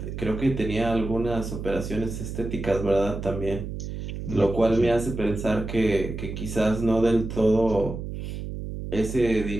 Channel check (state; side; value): noise; right; hum, 7 dB below the sound